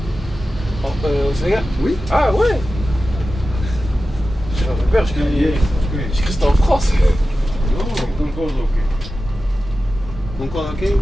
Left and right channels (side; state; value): both; normal; correlation 0.94